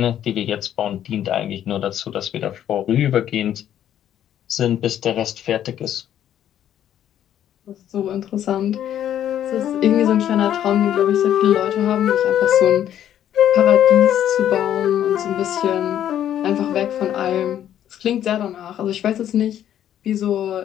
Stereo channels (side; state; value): right; quieter; 10.8 dB